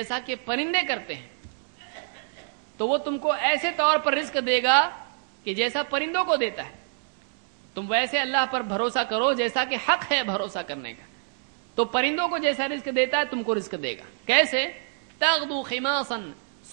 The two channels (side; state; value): left; silent; digital silence